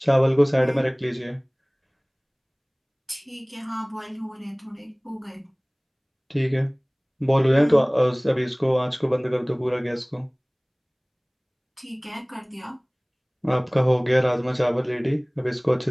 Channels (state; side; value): identical; both; correlation 1.00